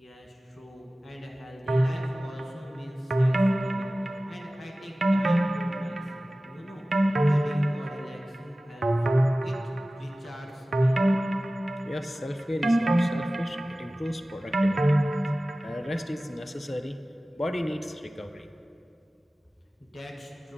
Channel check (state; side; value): normal; both; correlation 0.97